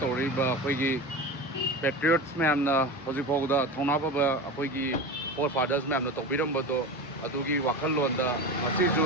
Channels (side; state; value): both; normal; correlation 0.27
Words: toriba akoi gi patriots ma'am ना होजी फोगदा थोनाबा बा अखोई की four fathers ma'am ना तोबिरम बदो अदुगी वाखल लोंदा मसीजु